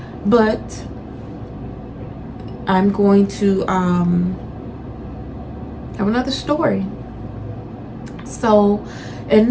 But I'm going to have another story. So in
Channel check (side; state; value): both; identical; correlation 1.00